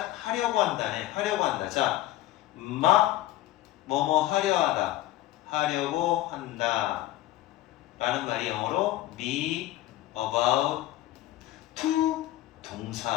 한다네. 하려고 한다. 자, 뭐뭐 하려고 한다. 라는 말이 영어로 be about to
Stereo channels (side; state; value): right; quieter; 15.6 dB